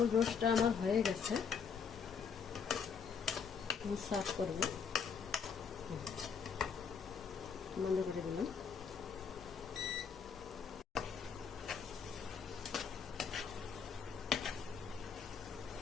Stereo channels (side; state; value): right; quieter; 6.4 dB